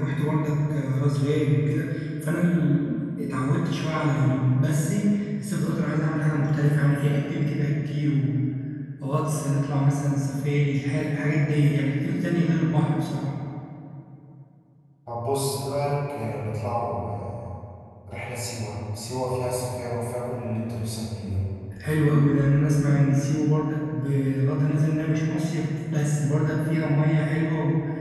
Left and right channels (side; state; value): both; identical; correlation 1.00